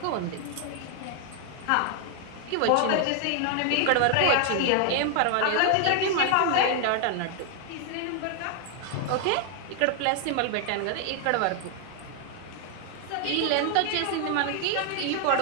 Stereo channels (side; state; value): both; different; correlation 0.00